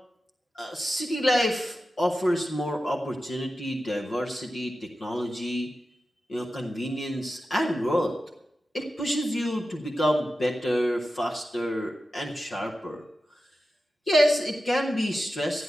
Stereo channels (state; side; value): normal; both; correlation 0.92